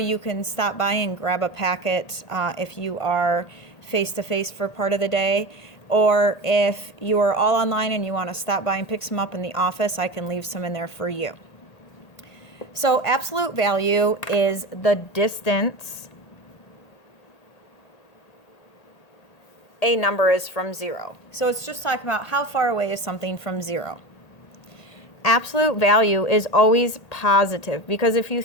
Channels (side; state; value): right; late; 1.8 ms